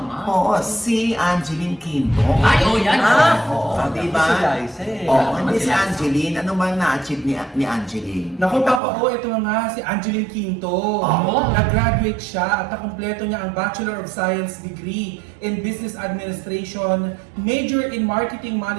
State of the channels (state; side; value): drops out; left; at 8.8 s